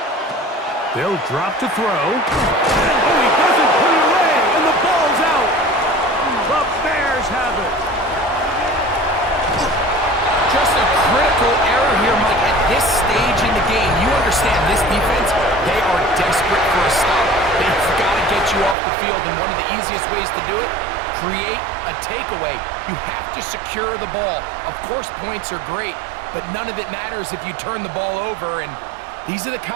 They'll drop to throw. Oh, he doesn't put it away, and the ball's out. The Bears have it. Just a critical error here, Mike, at this stage in the game. You understand this defense, they are desperate for a stop. They've got to get you off the field, and one of the easiest ways to do it, create a takeaway. You have to secure the ball. Of course, points are great, but none of it matters if you turn the ball over, and these are the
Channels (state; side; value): drops out; left; at 18.8 s